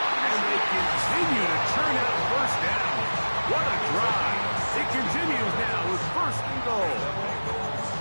And they continue to churn out first down. What a drive. It continues now with first and goal.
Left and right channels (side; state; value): both; inverted; correlation -1.00